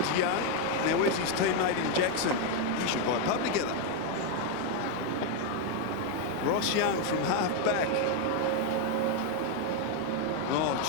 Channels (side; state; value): both; different; correlation 0.01